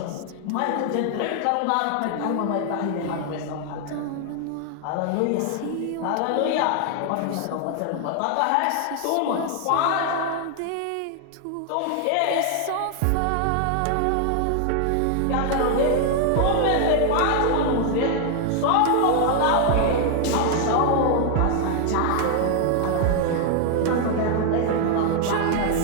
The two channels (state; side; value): different; both; correlation 0.00